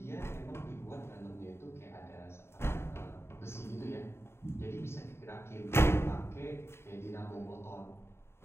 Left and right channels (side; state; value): right; late; 0.12 ms